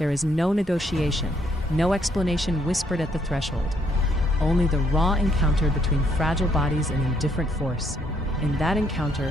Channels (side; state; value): both; normal; correlation 0.70